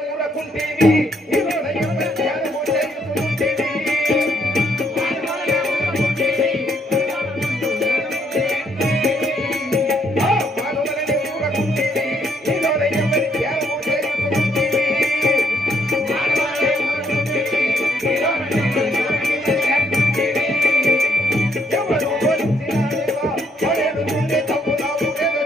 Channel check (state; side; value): normal; both; correlation 0.71